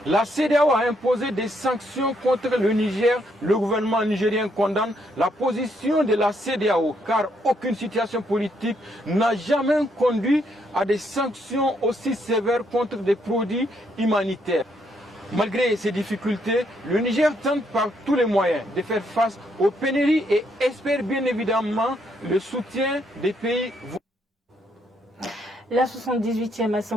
La CEDEAO a imposé des sanctions contre le Niger. Le gouvernement nigérien condamne la position de la CEDEAO car aucune situation politique n'a jamais conduit à des sanctions aussi sévères contre des produits humanitaires. Malgré ces difficultés, le Niger tente par tous les moyens de faire face aux pénuries et espère bien évidemment le soutien des pays voisins. La 78e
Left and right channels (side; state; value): both; normal; correlation 0.74